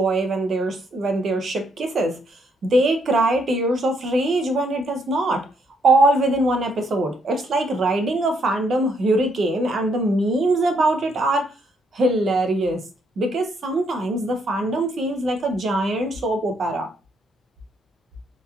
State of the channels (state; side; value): normal; both; correlation 0.72